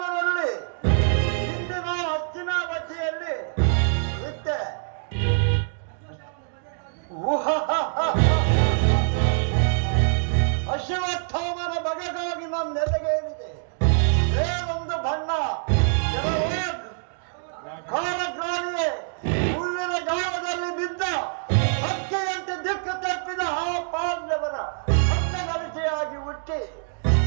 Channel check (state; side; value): silent; left; digital silence